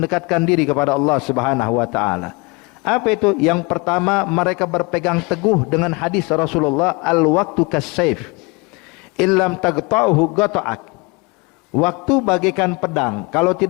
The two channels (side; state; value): right; quieter; 27.9 dB